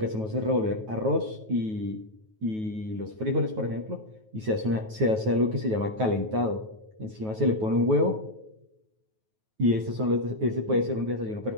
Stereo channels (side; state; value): left; late; 9.3 ms